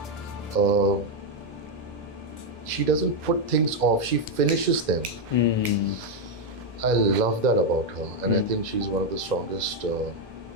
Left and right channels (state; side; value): normal; both; correlation 0.02